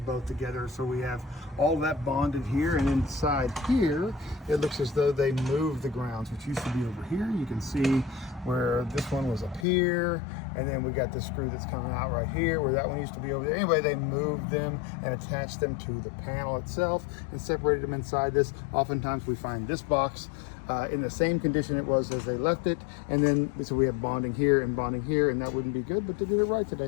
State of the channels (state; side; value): drops out; right; at 9.7 s